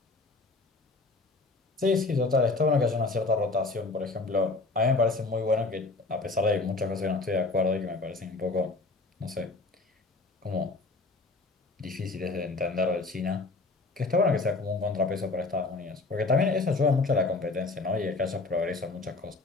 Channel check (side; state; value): right; quieter; 3.5 dB